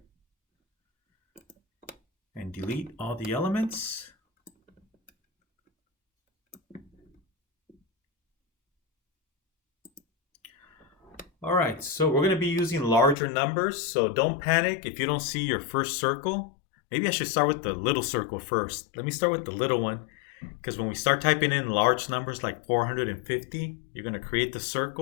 And delete all the elements. All right, so we're going to be using larger numbers, so don't panic if you don't see your first circle. Maybe I should start with the little circle first. Let me start with the little one, because when we start typing in large numbers like 450, you're going to create the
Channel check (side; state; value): right; drops out; at 13.2 s